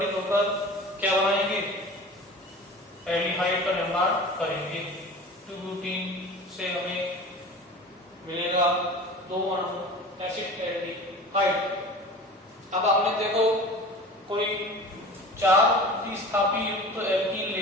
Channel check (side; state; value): both; normal; correlation 0.37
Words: होकर क्या बनाएंगे, एल्डिहाइड का निर्माण करेंगे। 2-ब्यूटीन से हमें मिलेगा 2 अणु एसिटाल्डिहाइड। अब आपने देखो कोई 4 प्रतिस्थापी युक्त एल्कीन